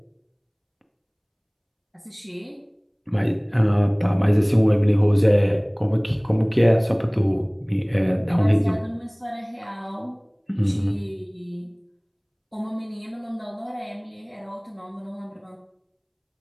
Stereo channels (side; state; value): both; identical; correlation 1.00